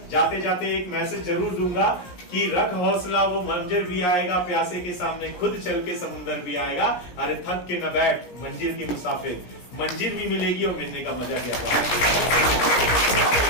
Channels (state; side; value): late; right; 17 ms